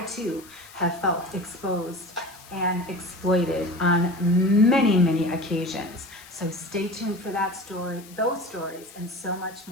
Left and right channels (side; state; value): left; noise; hiss, 21 dB below the sound